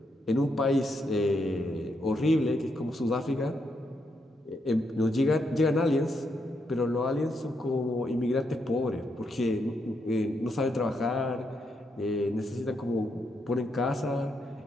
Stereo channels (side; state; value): both; normal; correlation 0.80